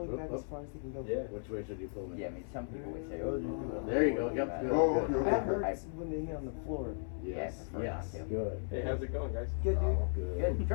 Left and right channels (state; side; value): silent; right; 54 dB below the other